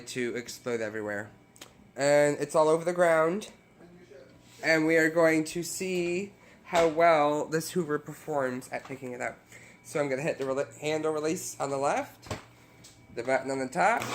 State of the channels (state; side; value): identical; both; correlation 1.00